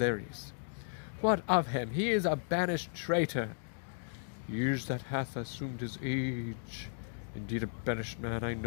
What of him? He is a banished traitor. Years that hath assumed his age. Indeed, a banished man, I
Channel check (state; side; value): silent; right; digital silence